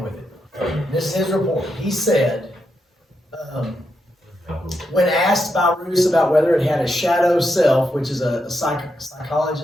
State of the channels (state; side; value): normal; both; correlation 0.83